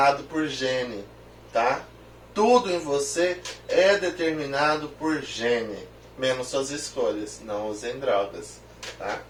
por gene, tá? Tudo em você é determinado por gene. Menos suas escolhas. Não usem drogas, tá?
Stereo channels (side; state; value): both; identical; correlation 1.00